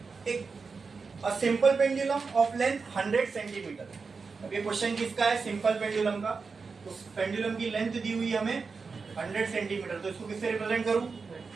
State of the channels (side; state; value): left; quieter; 4.8 dB